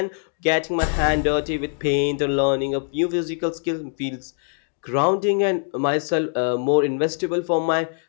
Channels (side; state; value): right; silent; 58 dB below the other